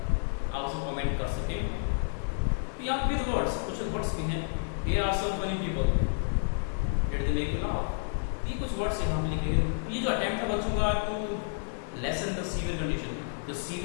उसे कमेंट कर सके। तो यहाँ विद वर्ड्स, कुछ वर्ड्स भी हैं, here are some funny people did they make you laugh, ये कुछ वर्ड्स यहाँ पे लिखे हैं। ये जो अटेम्प्ट था बच्चों का to lessen the severe condition, जो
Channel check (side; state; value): right; silent; digital silence